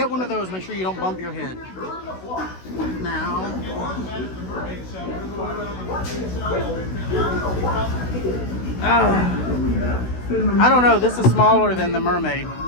one of those, make sure you don't bump your head. Now, I don't know. This is smaller than the Mermaid.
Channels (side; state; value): right; late; 16 ms